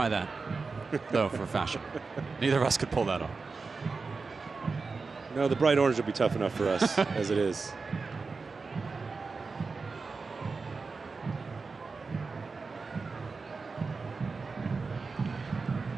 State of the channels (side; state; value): left; quieter; 4.4 dB